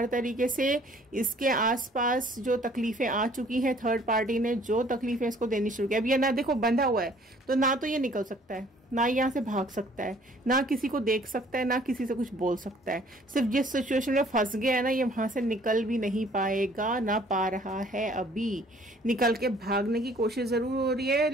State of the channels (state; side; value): normal; both; correlation 0.57